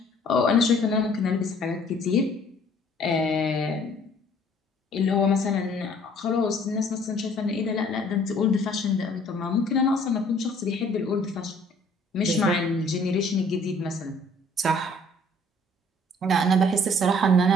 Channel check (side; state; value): both; normal; correlation 0.57